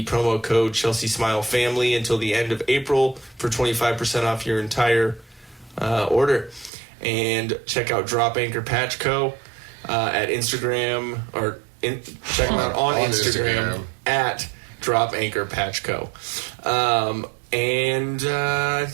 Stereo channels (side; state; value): left; drops out; at 6.7 s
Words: promo code Chelsea Smile Family until the end of April for 25% off your entire order. And check out Drop Anchor Patch Co. At Instagram, check them out on Instagram at Drop Anchor Patch Co. And I